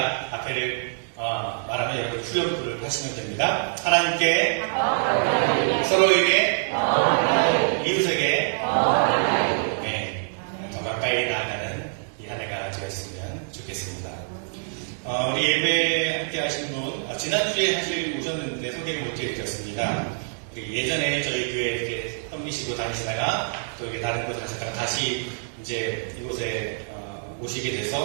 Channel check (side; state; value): left; silent; 62 dB below the other